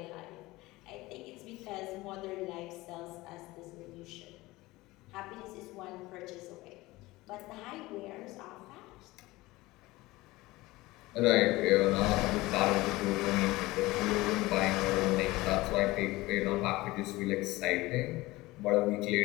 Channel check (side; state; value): right; quieter; 19.8 dB